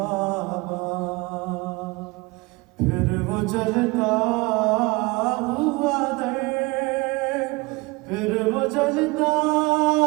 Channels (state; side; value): quieter; left; 24.6 dB